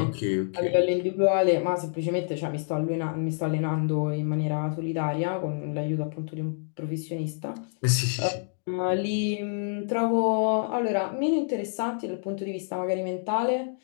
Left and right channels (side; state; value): right; silent; digital silence